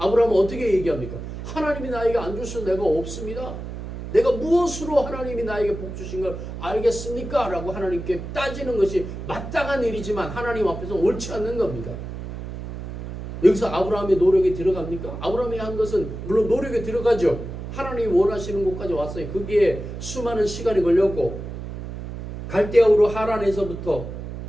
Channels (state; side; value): noise; right; hum, 8 dB below the sound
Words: 어떻게 얘기합니까? 하나님이 나에게 안 주셔서 내가 없습니다. 내가 무엇으로 하나님이 나에게 복 주신 걸 알겠습니까? 라고 하나님께 따지는 것이 마땅한 일이지만 하나님 앞에서 옳지 않는 겁니다. 여기서 아브라함의 노력이 들어갑니까? 아브라함이 한 것은 물론 노력이 들어가죠. 하나님이 원하시는 곳까지 왔어요. 거기에 수많은 시간이 걸렸고 갈대아우로 하란에서부터